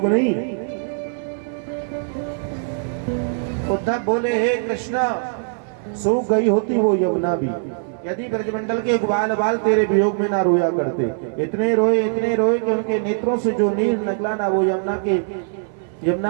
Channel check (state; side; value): silent; left; 59 dB below the other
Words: नहीं। उद्धव बोले, हे कृष्ण सूख गई होती वो यमुना भी, यदि ब्रजमंडल के ग्वाल बाल तेरे वियोग में ना रोया करते। इतने रोए कि उनके नेत्रों से जो नीर निकला ना, वो